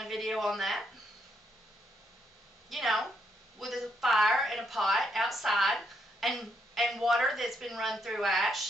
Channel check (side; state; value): both; normal; correlation 0.76